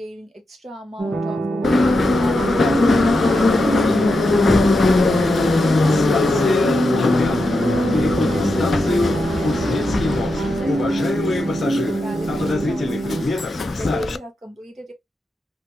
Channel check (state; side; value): normal; both; correlation 0.87